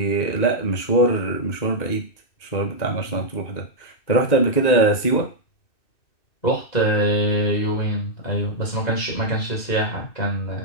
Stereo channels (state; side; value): late; right; 2.6 ms